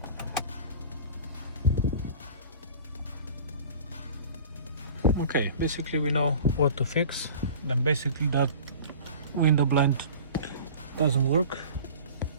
Okay, basically we know what to fix. Then basically that window blind doesn't work.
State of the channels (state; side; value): inverted; both; correlation -0.41